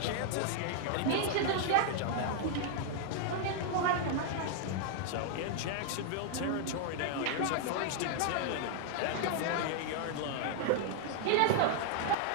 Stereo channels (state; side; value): different; both; correlation 0.00